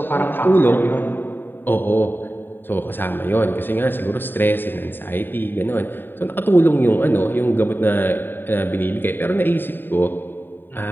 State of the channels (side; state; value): right; late; 0.094 ms